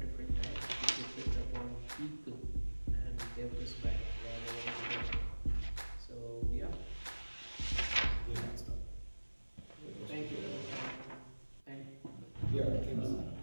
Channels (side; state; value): both; inverted; correlation -1.00